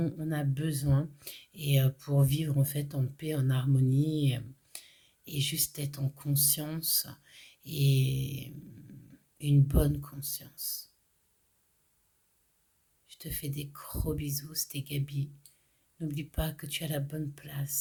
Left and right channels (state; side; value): identical; both; correlation 1.00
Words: on a besoin et pour vivre en fait en paix, en harmonie et juste être en conscience et une bonne conscience. Je te fais des gros bisous, c'était Gabi. N'oublie pas que tu as la bonne